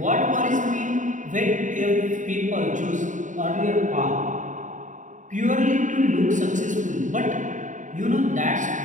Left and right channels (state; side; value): late; left; 0.36 ms